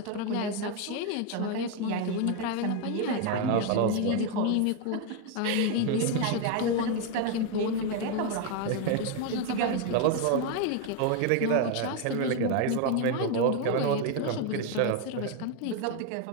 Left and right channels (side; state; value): both; different; correlation 0.02